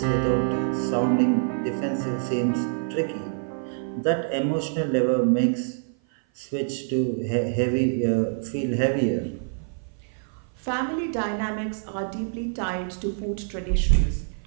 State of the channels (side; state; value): left; silent; 55 dB below the other